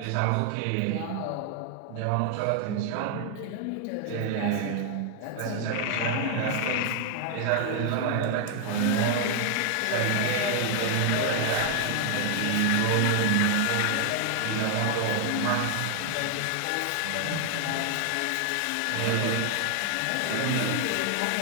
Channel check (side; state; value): both; different; correlation 0.00